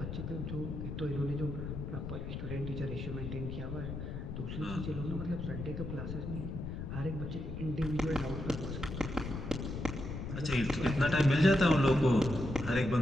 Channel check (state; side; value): noise; left; rumble, 6 dB below the sound